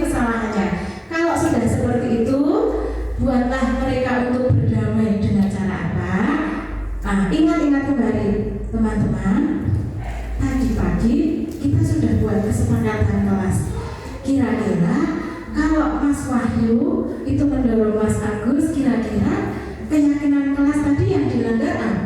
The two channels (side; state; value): both; identical; correlation 1.00